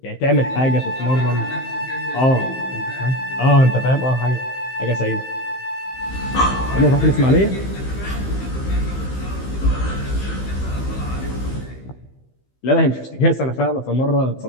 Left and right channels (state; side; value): late; right; 15 ms